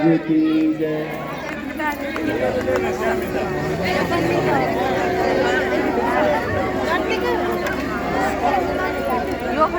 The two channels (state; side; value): identical; both; correlation 1.00